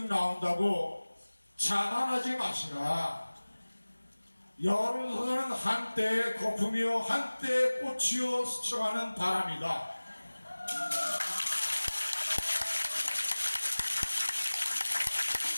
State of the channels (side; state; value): both; inverted; correlation -1.00